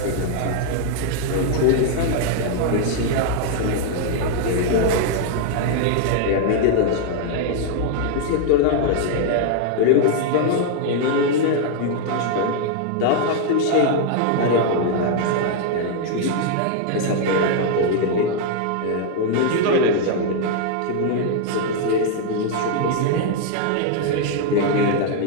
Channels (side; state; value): both; different; correlation 0.00